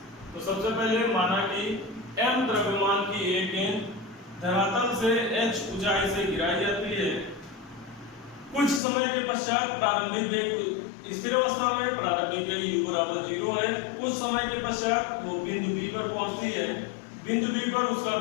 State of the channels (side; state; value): right; drops out; at 8.8 s